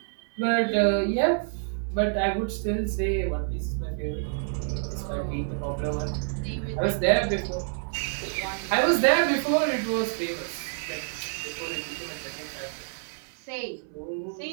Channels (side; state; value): left; silent; 59 dB below the other